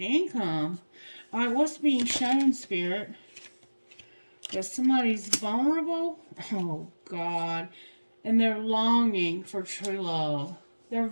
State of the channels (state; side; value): inverted; both; correlation -1.00